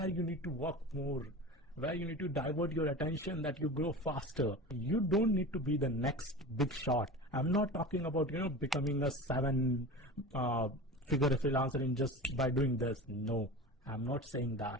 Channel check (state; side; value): normal; both; correlation 0.32